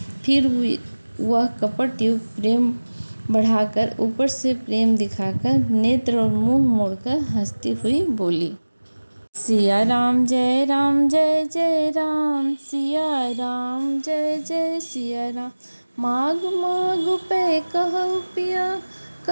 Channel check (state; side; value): inverted; both; correlation -1.00